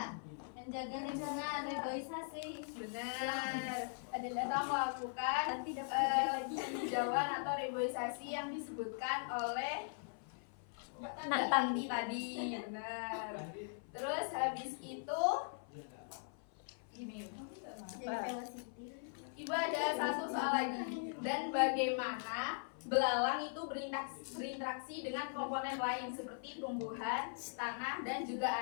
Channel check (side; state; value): right; silent; 51 dB below the other